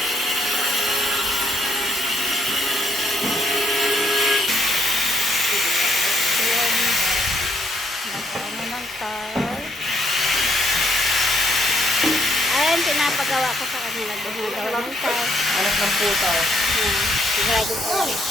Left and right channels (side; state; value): both; normal; correlation 0.71